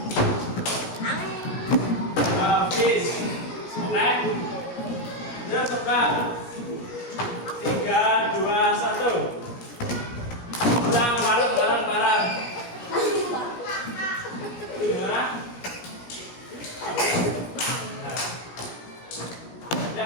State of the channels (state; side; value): late; right; 17 ms